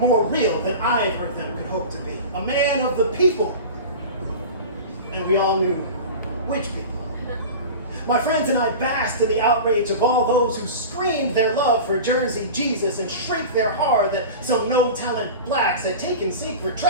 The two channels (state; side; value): inverted; both; correlation -0.32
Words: real than either of them could hope to be. A man of the people. And we all knew which people. My friends and I basked in the outrage of all those who screamed their love for Jersey Jesus and shrieked their horror that some no-talent blacks had taken sacred